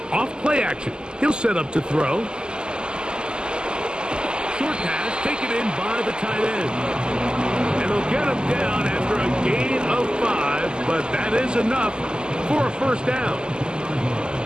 Off play action. He'll set up to throw. Short pass taken in by the tight end. And they'll get him down after a gain of 5, but that is enough for a first down.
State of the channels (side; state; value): left; late; 0.047 ms